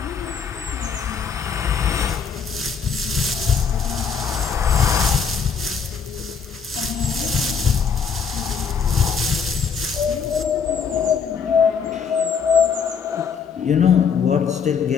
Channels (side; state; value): right; quieter; 6.3 dB